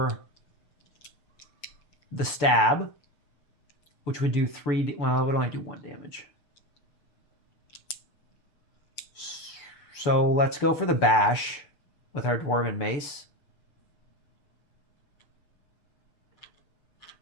the stab, which would do 3... Well, it would only do 1 damage. So let's go for the bash with our Dwarven Mace.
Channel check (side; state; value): right; late; 6.9 ms